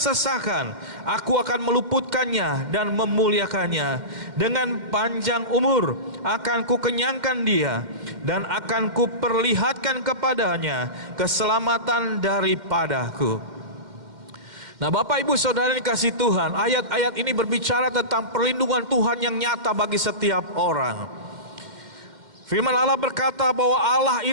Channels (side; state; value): left; late; 2.1 ms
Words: Aku akan meluputkannya dan memuliakannya. Dengan panjang umur akan kukenyangkan dia, dan akan kuperlihatkan kepadanya keselamatan daripadaku. Nah, Bapak Ibu Saudara yang dikasihi Tuhan, ayat-ayat ini berbicara tentang perlindungan Tuhan yang nyata bagi setiap orang. Firman Allah berkata bahwa Allah